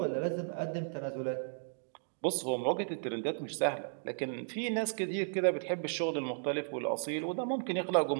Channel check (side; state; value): left; silent; digital silence